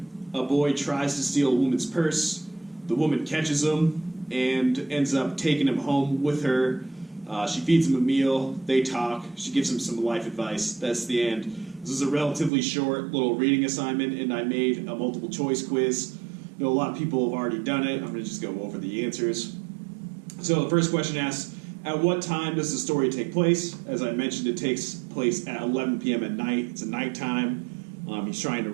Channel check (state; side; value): drops out; left; at 12.5 s